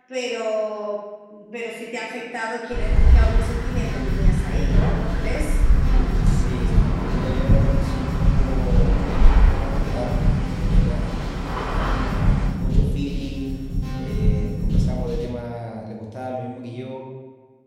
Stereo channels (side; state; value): both; identical; correlation 1.00